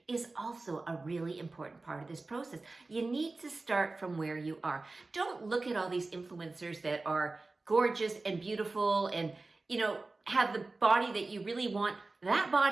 is also a really important part of this process. You need to start from where you are. Don't look at all these influencers that are gorgeous and beautiful and, you know, have the body that you really want. That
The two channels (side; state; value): left; quieter; 3.4 dB